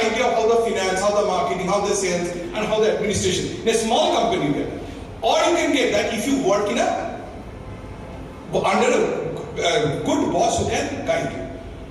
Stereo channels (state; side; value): identical; both; correlation 1.00